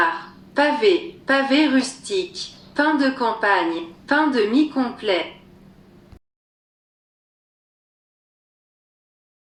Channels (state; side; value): identical; both; correlation 1.00